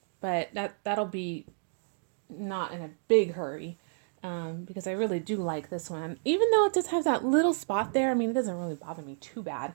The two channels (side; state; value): left; silent; digital silence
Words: but that'll be not in a big hurry because I really do like this one. Even though it just has that little spot there, I mean, it doesn't really bother me too bad.